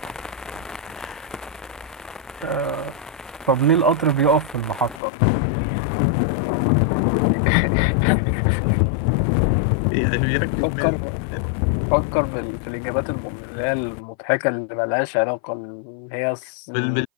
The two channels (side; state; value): right; drops out; at 5.0 s